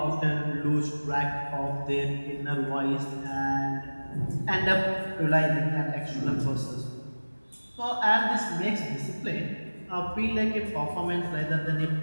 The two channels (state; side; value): inverted; both; correlation -1.00